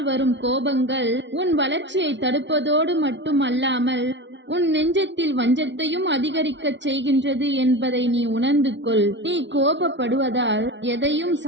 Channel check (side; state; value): left; late; 0.52 ms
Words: வரும் கோபங்கள் உன் வளர்ச்சியை தடுப்பதோடு மட்டுமல்லாமல் உன் நெஞ்சத்தில் வஞ்சத்தையும் அதிகரிக்கச் செய்கின்றது என்பதை நீ உணர்ந்து கொள். நீ கோபப்படுவதால் எதையும்